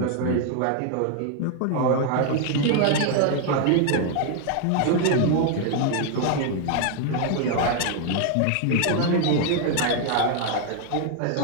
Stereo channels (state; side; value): different; both; correlation 0.00